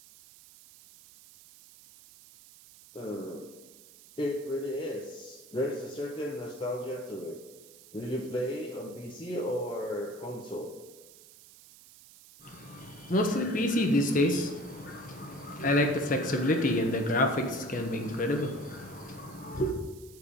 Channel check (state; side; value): noise; right; hiss, 21 dB below the sound